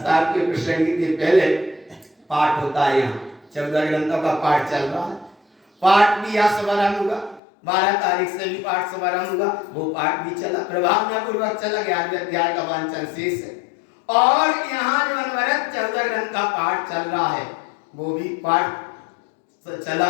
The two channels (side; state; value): right; drops out; at 7.4 s